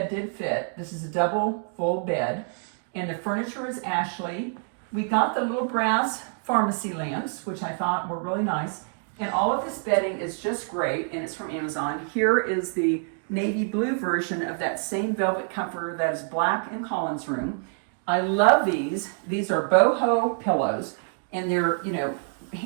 did fit. This is a double full bed. And the furniture is Ashley. We got the little brass pharmacy lamps, which I thought were really nice. And all of this bedding is just great, and it's from Amazon. Here is the navy blue version of that same velvet comforter that is black in Colin's room. I love these. These are boho pillows, and they're, you know,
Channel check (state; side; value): silent; left; 55 dB below the other